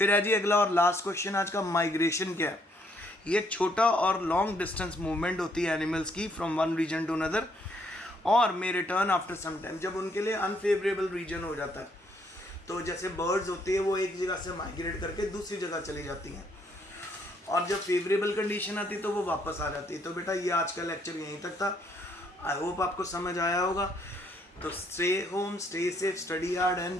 है जी अगला और लास्ट क्वेश्चन आज का, माइग्रेशन क्या है। ये छोटा और लॉन्ग डिस्टेंस मूवमेंट होती है एनिमल्स की from one region to another, और may return after some time, जब उनके लिए अनफेवरेबल रीजन हो जाता है। तो जैसे बर्ड्स होती है वो एक जगह से माइग्रेट करके दूसरी जगह चली जाती हैं, और जब फेवरेबल कंडीशन आती तो वो वापस आ जाती है। तो बेटा ये आज का लेक्चर यहीं तक था, आई होप आपको समझ आया होगा। तो stay home, stay safe, study hard and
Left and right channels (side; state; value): both; normal; correlation 0.69